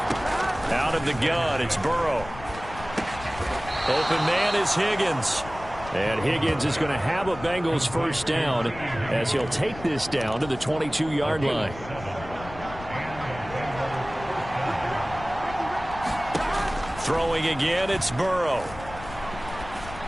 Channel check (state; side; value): noise; left; rumble, 14 dB below the sound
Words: Out of the gun, it's Burrow. Open man is Higgins. And Higgins is going to have a Bengals first down as he'll take this down to the 22-yard line. Throwing again, it's Burrow.